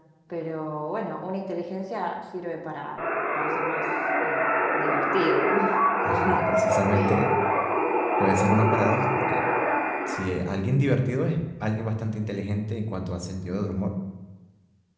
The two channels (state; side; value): identical; both; correlation 1.00